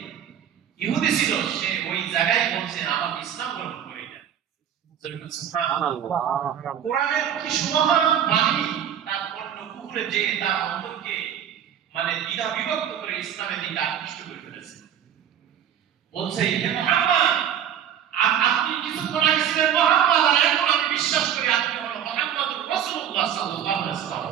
ইহুদি ছিল, সে ওই জায়গায় বলছে আমাকে ইসলাম গ্রহণ করে দেন। সুবহানাল্লাহ। কোরআনের কি সুমহান বাণী, তার অন্য কুফরে যে তার অন্তরকে মানে দ্বিধা বিভক্ত করে ইসলামের দিকে আকৃষ্ট করে ফেলেছে। বলছে হে মুহাম্মদ, আপনি কিছুক্ষণ আগে ছিলেন মুহাম্মদ, আর এখন আমি বিশ্বাস করি আপনি হলেন মুহাম্মদুর রাসূলুল্লাহ সাল্লাল্লাহু আলাইহি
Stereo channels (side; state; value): left; quieter; 9.5 dB